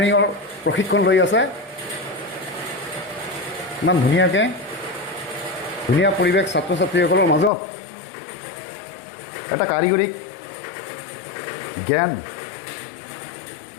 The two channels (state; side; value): drops out; right; at 7.5 s